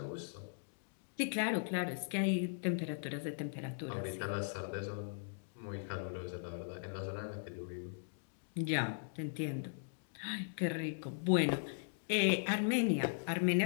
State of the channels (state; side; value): silent; right; digital silence